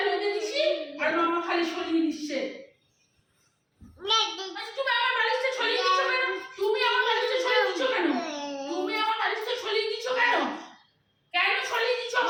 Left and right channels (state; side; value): identical; both; correlation 1.00